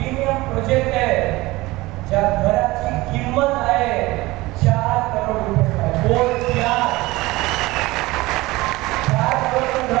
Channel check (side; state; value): left; quieter; 20.2 dB